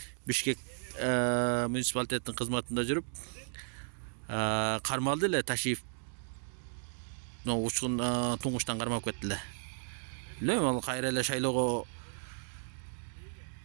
Бишкек муниципалитеттин кызматында жүрүп, кармалды эле, Ташиев учкун туңуштан кармап кетти эле. Билбейм, ал кайра эле шайлоого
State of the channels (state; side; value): silent; left; digital silence